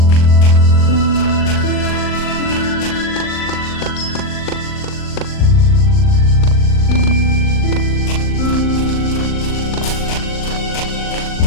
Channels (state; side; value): late; right; 39 ms